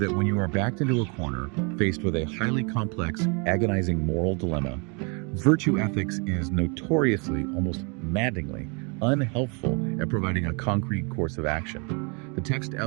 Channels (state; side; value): quieter; left; 33.3 dB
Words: when you are backed into a corner, faced with a highly complex, agonizing moral dilemma, virtue ethics is notoriously, almost maddeningly, unhelpful at providing a concrete course of action. The text